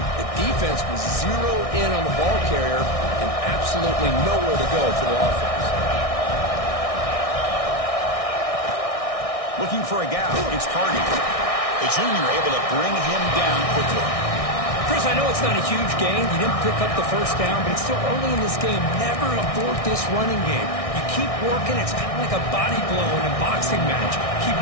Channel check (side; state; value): right; late; 1.6 ms